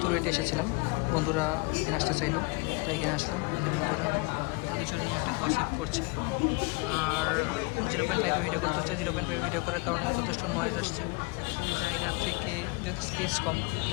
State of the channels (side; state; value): right; quieter; 28.4 dB